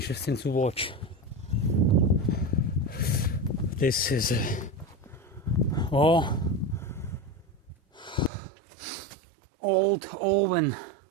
to watch. This is a old oven,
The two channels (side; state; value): left; drops out; at 8.3 s